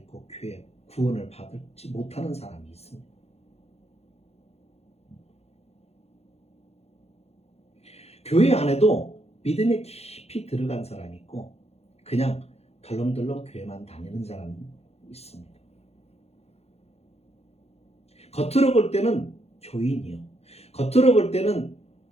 교회 구원을 받지 못하는 사람이 있습니다. 교회 안에도 믿음에 깊이 들어간 사람이 있고 그냥 덜렁덜렁 교회만 다니는 사람이 있습니다. 겉으로 볼 때는 교인이요, 겉으로 볼 때는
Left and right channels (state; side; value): late; right; 0.30 ms